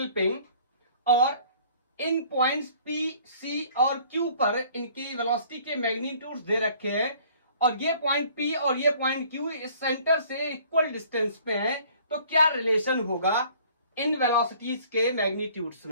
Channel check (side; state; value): both; inverted; correlation -0.54